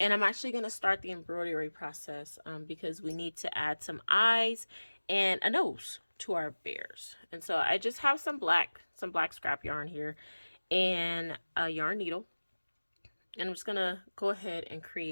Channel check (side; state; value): both; inverted; correlation -1.00